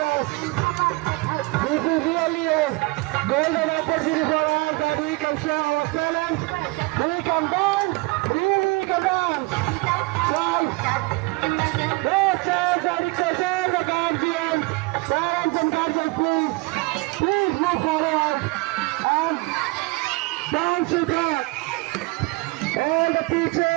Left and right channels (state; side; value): quieter; left; 24.6 dB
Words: This is really a golden opportunity for us that we can show our talent, we can dance, really can dance. So, no chance, I request all the guardians, parents and guardians, please move forward and dance with us. All the